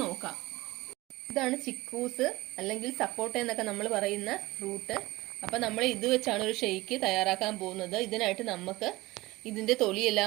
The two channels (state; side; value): quieter; left; 19.9 dB